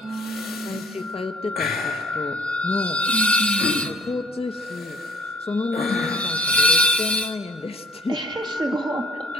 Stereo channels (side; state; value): both; normal; correlation 0.56